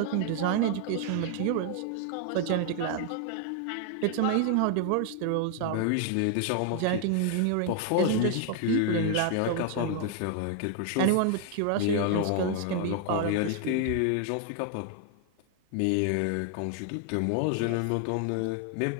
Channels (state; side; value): different; both; correlation 0.00